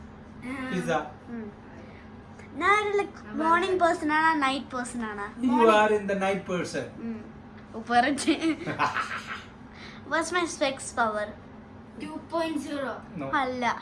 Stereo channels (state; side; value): identical; both; correlation 1.00